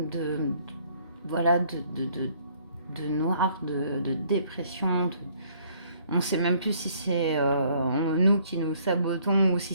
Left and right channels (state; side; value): inverted; both; correlation -0.63